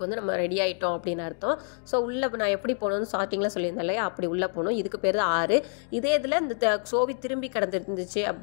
வந்து நம்ம ரெடி ஆகிட்டோம் அப்படின்னு அர்த்தம். ஸோ உள்ளே நான் எப்படி போகணும்னு ஸ்டார்டிங்கில் சொல்லியிருந்தேன் இல்லையா, அப்படி உள்ளே போகணும். இதுக்கு பேர் தான் 6. இதே இதில் இந்த சோவி திரும்பி கிடந்துருந்துச்சு,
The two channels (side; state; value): right; silent; 58 dB below the other